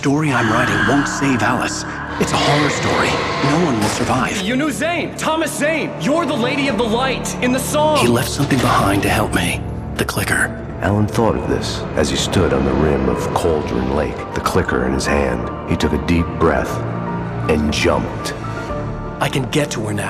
I'm writing won't save Alice. It's a horror story. No one will survive. You knew Zane! Thomas Zane! You're the Lady of the Light in the song! He left something behind to help me. The clicker. Alan thought of this as he stood on the rim of Cauldron Lake, the clicker in his hand. He took a deep breath and jumped. I can get to her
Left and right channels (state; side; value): identical; both; correlation 1.00